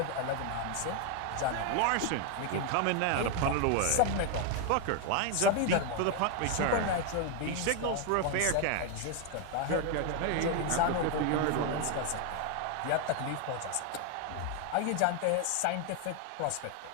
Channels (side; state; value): both; different; correlation 0.01